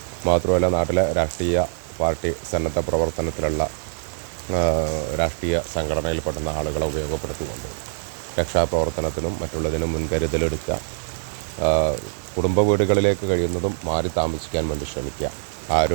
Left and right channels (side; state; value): left; silent; 63 dB below the other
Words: മാത്രമല്ല നാട്ടിലെ രാഷ്ട്രീയ പാർട്ടി സന്നദ്ധ പ്രവർത്തനത്തിലുള്ള രാഷ്ട്രീയ സംഘടനയിൽപ്പെടുന്ന ആളുകളെ ഉപയോഗപ്പെടുത്തിക്കൊണ്ട് രക്ഷാപ്രവർത്തനത്തിനും മറ്റുള്ളതിനും മുൻകരുതലെടുക്കുക. കുടുംബ വീടുകളിലേക്ക് കഴിയുന്നതും മാറി താമസിക്കാൻ വേണ്ടി ശ്രമിക്കുക.